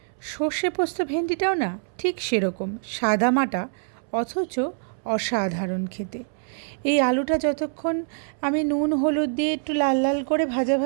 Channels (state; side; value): silent; left; 62 dB below the other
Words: সর্ষে পোস্ত ভেন্ডিটাও না ঠিক সেরকম সাদামাটা, অথচ অসাধারণ খেতে। এই আলুটা যতক্ষণ আমি নুন হলুদ দিয়ে একটু লাল লাল করে ভাজা